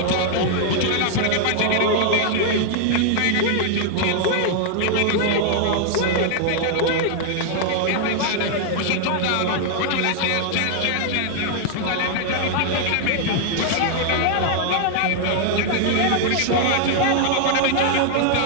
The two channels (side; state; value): both; different; correlation 0.00